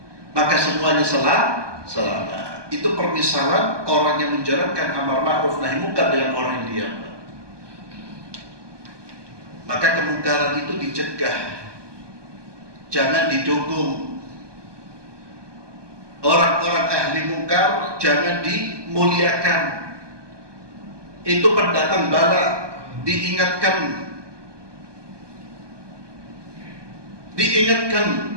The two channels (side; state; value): left; late; 1.2 ms